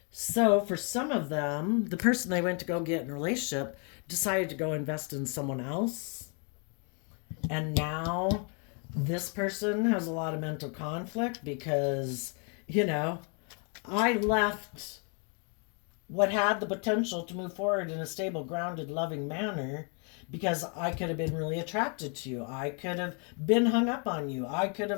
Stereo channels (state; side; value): quieter; right; 38.2 dB